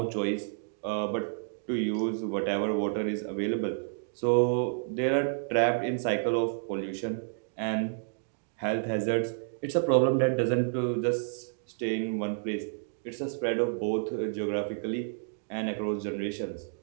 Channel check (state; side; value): silent; left; digital silence